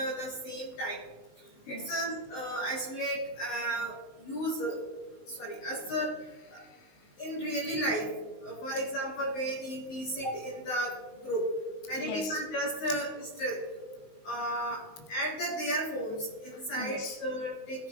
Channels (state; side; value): late; right; 19 ms